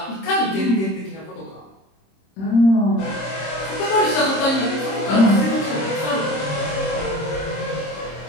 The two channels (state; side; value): late; right; 26 ms